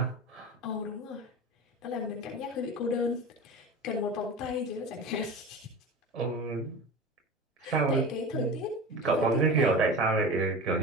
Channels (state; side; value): normal; both; correlation 0.31